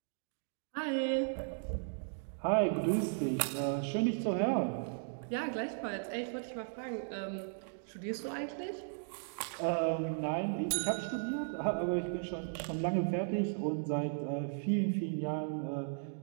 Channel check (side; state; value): left; silent; digital silence